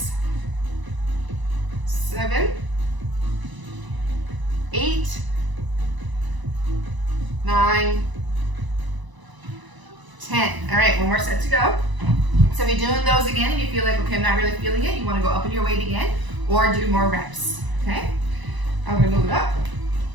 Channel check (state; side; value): late; left; 1.0 ms